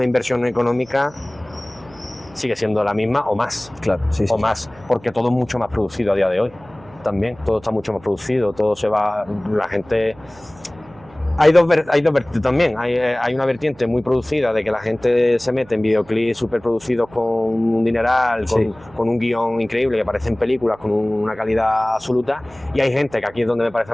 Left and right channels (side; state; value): right; noise; hum, 25 dB below the sound